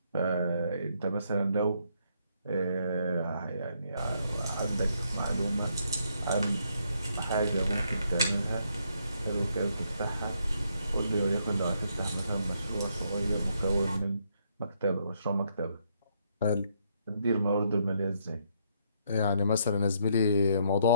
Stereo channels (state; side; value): inverted; both; correlation -0.73